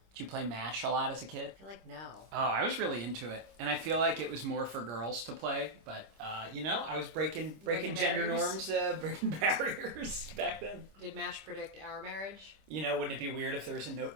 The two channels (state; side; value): late; left; 26 ms